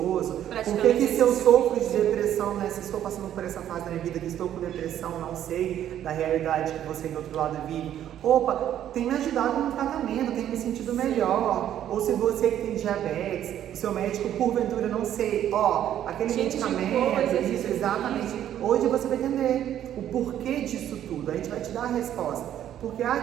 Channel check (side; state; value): left; quieter; 11.0 dB